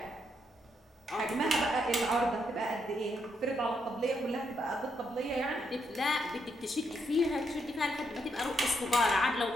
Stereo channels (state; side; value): normal; both; correlation 0.78